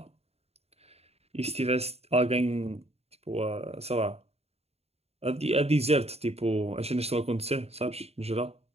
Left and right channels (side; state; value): left; late; 0.30 ms